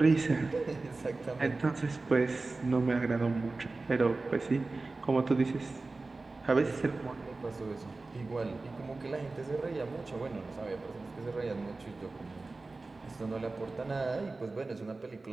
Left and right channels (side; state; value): left; quieter; 3.5 dB